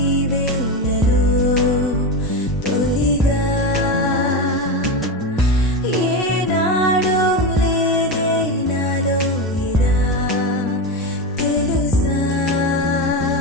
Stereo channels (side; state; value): both; normal; correlation 0.17